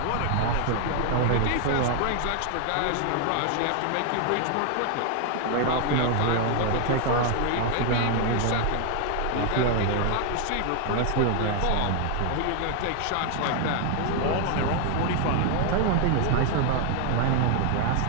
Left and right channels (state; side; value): different; both; correlation 0.00